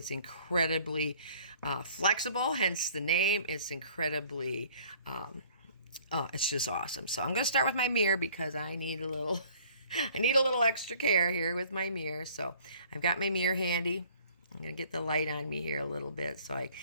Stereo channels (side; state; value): both; inverted; correlation -0.54